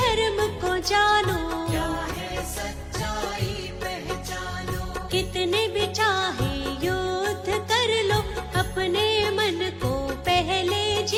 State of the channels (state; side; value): identical; both; correlation 1.00